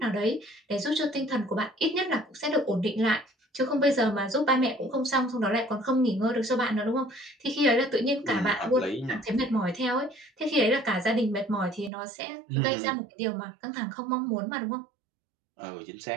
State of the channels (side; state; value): left; drops out; at 11.9 s